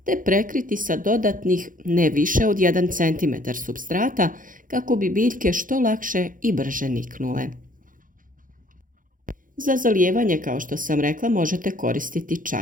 te prekriti sa dodatnih ne više od 1 cm supstrata kako bi biljke što lakše i brže niknule. Za zalijevanje, kao što sam rekla, možete koristiti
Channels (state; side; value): late; left; 0.39 ms